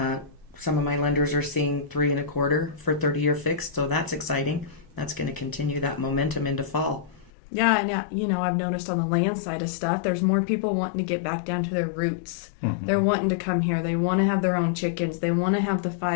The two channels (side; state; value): right; drops out; at 7.3 s